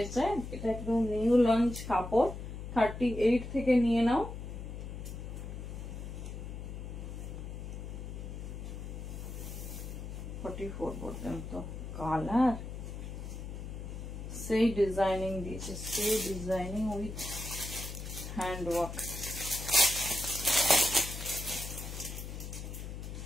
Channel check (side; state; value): left; noise; hum, 8 dB below the sound